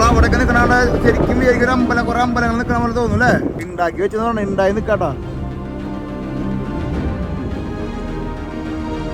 ശരിക്കും വിചാരിക്കും ഒരു അമ്പലം, കുറെ അമ്പലങ്ങൾ നിൽക്കണ പോലെ തോന്നും അല്ലേ. ഉണ്ടാക്കി വെച്ചെന്ന് പറഞ്ഞാൽ ഉണ്ടായി നിൽക്കാട്ടാ.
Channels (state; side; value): identical; both; correlation 1.00